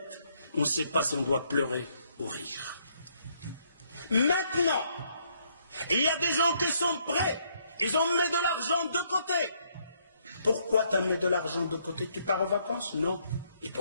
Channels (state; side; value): inverted; both; correlation -0.71